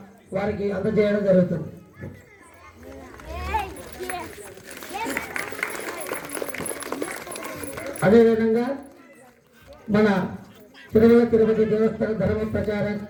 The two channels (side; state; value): both; identical; correlation 1.00